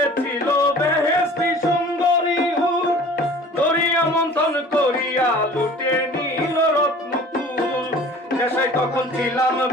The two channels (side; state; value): both; normal; correlation 0.46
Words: বেহেশতি সুন্দরী হুর, দরিয়া মন্থন করিয়া লুটে নিল রত্নকুল। নেশায় তখন ছিলাম